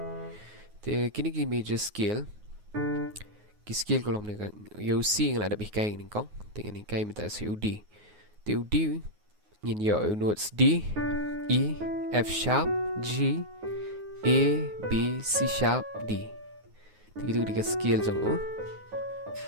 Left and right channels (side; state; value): left; late; 9.5 ms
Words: te kini ki major scale ki scale ko long ni yo C ng ada bihkai ni kong dengan ni kay minta si U D te U D ngin yo notes D E F sharp G A B C sharp D te gitu di scale jang